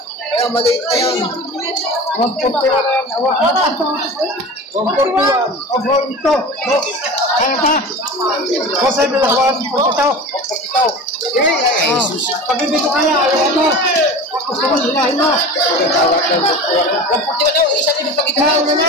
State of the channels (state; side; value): normal; both; correlation 0.33